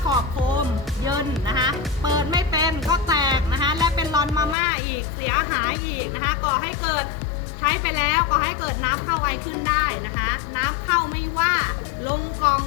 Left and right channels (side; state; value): right; drops out; at 4.5 s